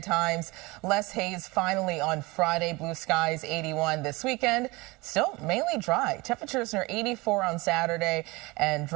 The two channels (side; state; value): left; quieter; 23.4 dB